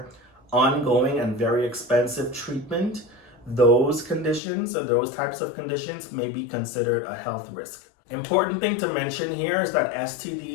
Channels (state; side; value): drops out; right; at 4.4 s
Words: ongoing and very expensive treatment, those conditions or those types of conditions may be considered a health risk. Important thing to mention here is that